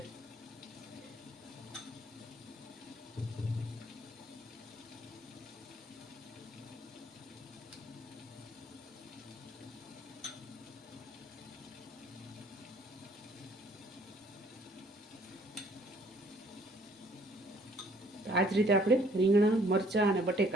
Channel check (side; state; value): both; normal; correlation 0.60